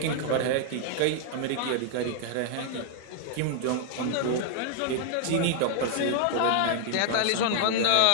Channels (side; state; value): both; different; correlation -0.01